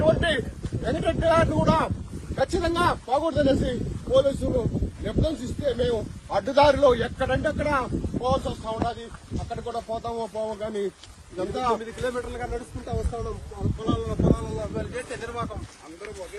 వెంకటరెడ్డి గారిని కూడా ఖచ్చితంగా పోకూడదనేసి పోలీసులు నిర్బంధిస్తే మేము అడ్డుదారిలో ఎక్కడంటే అక్కడ పోవాల్సి వస్తా ఉన్నది. అక్కడ కూడా పోతామో పోవో కానీ ఇదంతా 9 కిలోమీటర్లుగా నడుచుకుంటా వస్తా ఉన్నాం. పొలాలలో వాళ్ళు చేస్తే నిర్వాహకం అందరూ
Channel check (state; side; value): identical; both; correlation 1.00